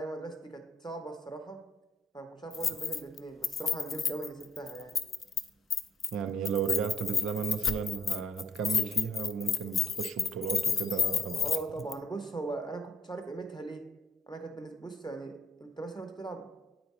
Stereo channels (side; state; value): both; normal; correlation 0.68